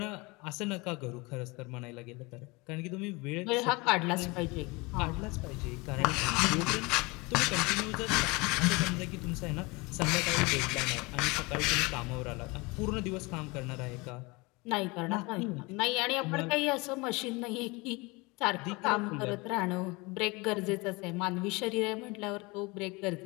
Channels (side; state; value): right; quieter; 25.6 dB